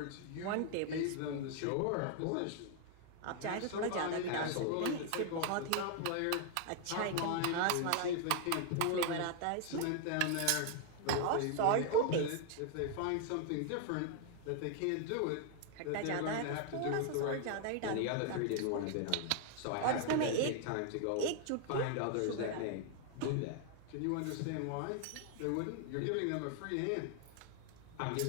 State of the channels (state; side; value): different; both; correlation 0.00